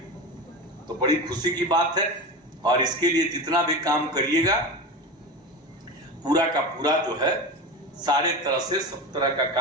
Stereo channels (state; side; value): normal; both; correlation 0.25